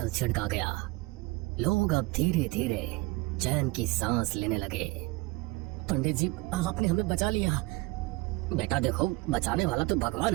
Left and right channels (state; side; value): quieter; left; 22.4 dB